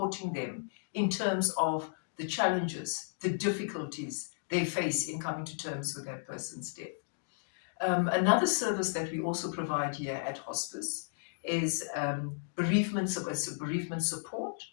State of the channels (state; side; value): silent; right; digital silence